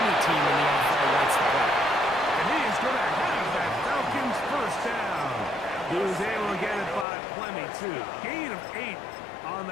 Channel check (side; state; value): right; drops out; at 7.1 s